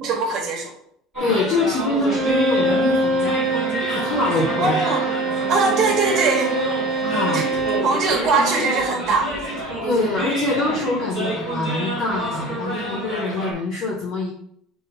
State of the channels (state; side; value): normal; both; correlation 0.40